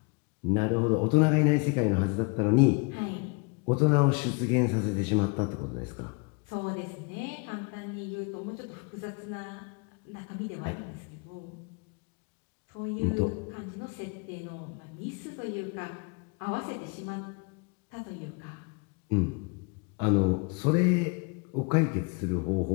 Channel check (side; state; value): right; quieter; 32.2 dB